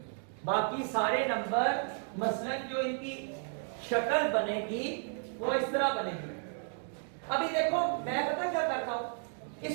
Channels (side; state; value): left; silent; 56 dB below the other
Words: बाकी सारे नंबर मसलन जो इनकी शक्ल बनेगी वो इस तरह बनेगी। अभी देखो मैं पता क्या करता हूं,